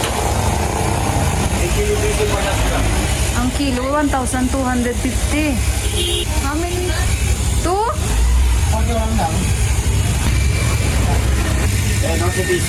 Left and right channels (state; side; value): identical; both; correlation 1.00